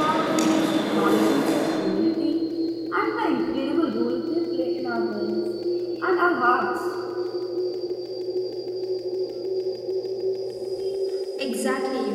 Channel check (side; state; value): both; identical; correlation 1.00